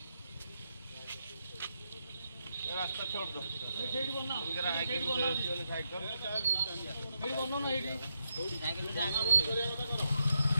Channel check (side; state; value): both; inverted; correlation -0.82